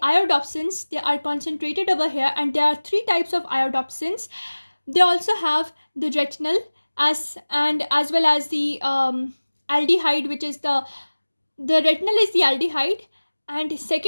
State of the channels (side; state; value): both; inverted; correlation -1.00